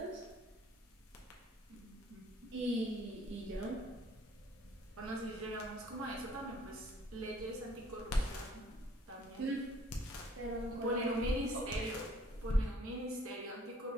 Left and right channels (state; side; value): normal; both; correlation 0.59